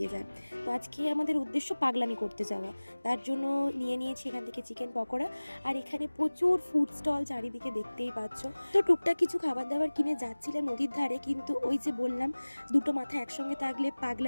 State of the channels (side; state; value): both; inverted; correlation -1.00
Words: যায়। তো আজকে আমাদের উদ্দেশ্য পাগলামি করতে যাওয়া। তার জন্য নিয়েছি এখান থেকে চিকেন পকোড়া। আর এখানে প্রচুর ফুড স্টল চারিদিকে দেখতেই পাচ্ছ। তো টুকটাক কিছু খাবার দাবার কিনে যাচ্ছিলাম নদীর ধারে, কিন্তু ওই যে বললাম দুটো মাথা একসঙ্গে থাকলে